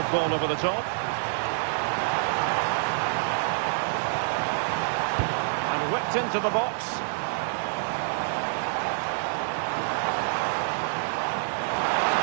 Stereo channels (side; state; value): left; silent; digital silence